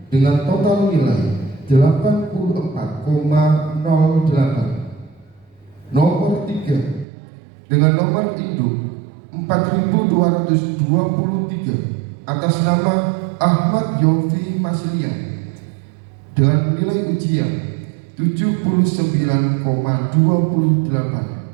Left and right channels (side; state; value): left; drops out; at 7.1 s